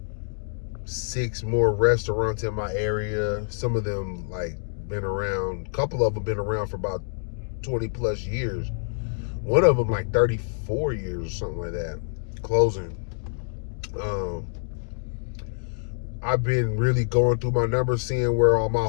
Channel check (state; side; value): silent; right; digital silence